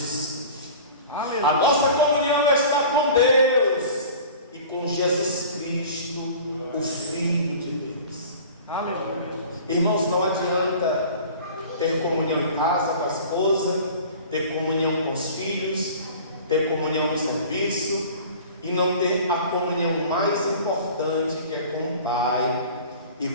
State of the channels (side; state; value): both; inverted; correlation -0.41